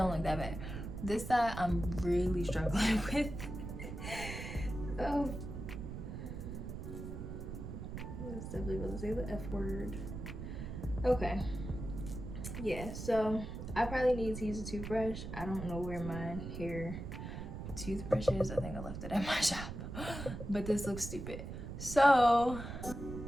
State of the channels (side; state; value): right; noise; rumble, 7 dB below the sound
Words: look that bad. This side I'm really struggling with. Oh, I was definitely about to say the F word. Okay, yeah, so I probably need to use a toothbrush. I don't know where my hair toothbrush is. I think I left it at my shop. But this looks stupid. So